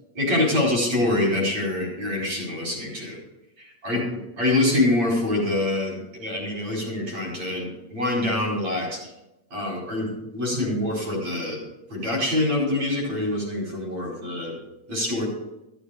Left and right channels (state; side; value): late; left; 8.6 ms